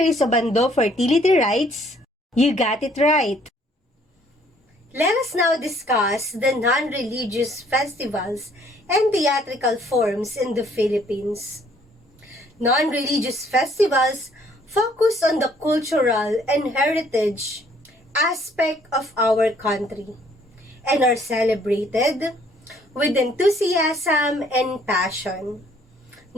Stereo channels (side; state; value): both; normal; correlation 0.62